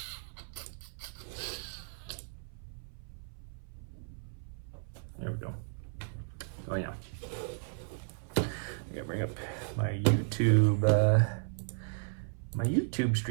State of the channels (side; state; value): left; silent; 55 dB below the other